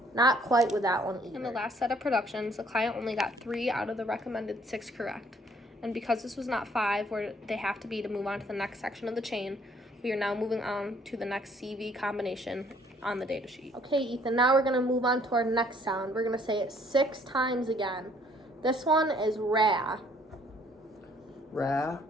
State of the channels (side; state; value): both; normal; correlation 0.62